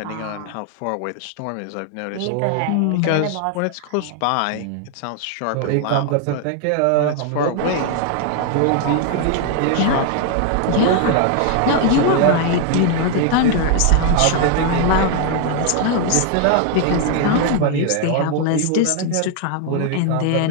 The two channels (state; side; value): different; both; correlation 0.00